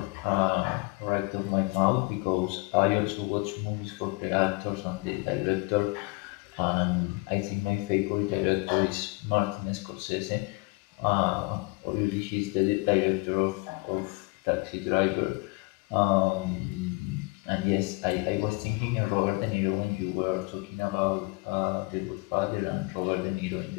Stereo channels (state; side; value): quieter; right; 26.4 dB